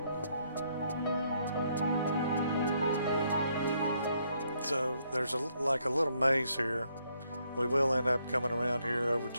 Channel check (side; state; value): both; inverted; correlation -0.72